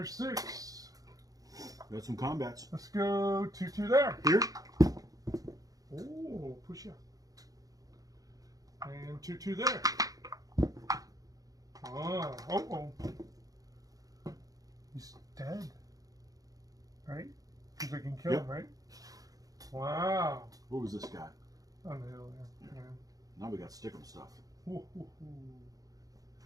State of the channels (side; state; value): left; late; 0.17 ms